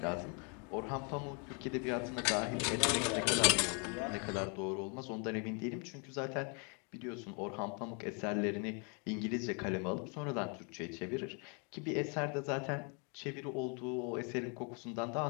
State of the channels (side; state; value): right; quieter; 36.3 dB